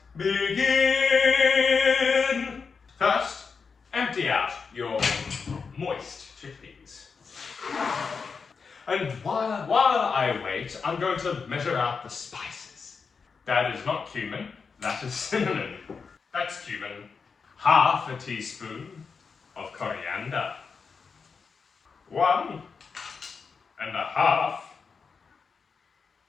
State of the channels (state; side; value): quieter; right; 5.3 dB